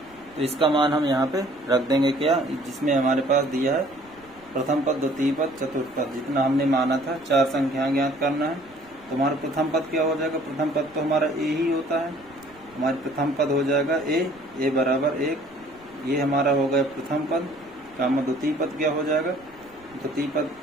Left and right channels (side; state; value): right; noise; rumble, 28 dB below the sound